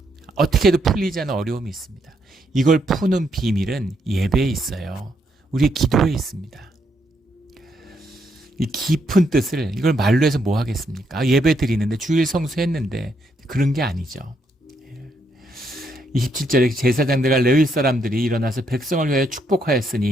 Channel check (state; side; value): normal; both; correlation 0.76